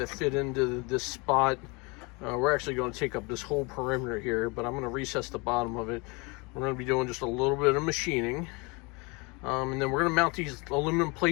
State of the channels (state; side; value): quieter; right; 28.2 dB